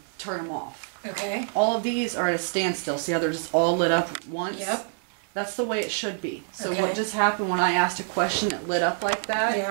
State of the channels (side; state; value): left; silent; 61 dB below the other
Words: turn them off. Okay. All of these are at a standstill. See how they're just all lit up once? Yep. That's the way it should be. So what just happened when I asked a question, it lit up like that?